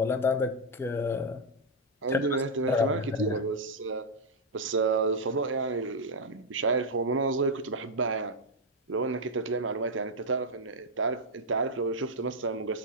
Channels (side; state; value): both; normal; correlation -0.01